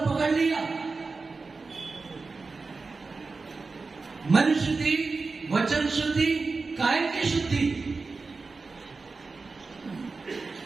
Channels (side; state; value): left; quieter; 4.1 dB